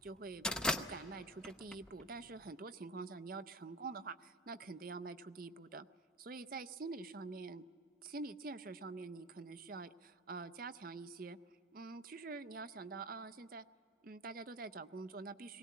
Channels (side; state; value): both; normal; correlation 0.35